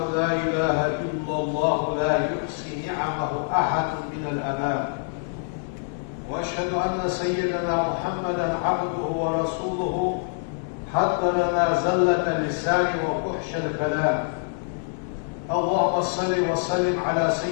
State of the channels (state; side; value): silent; right; digital silence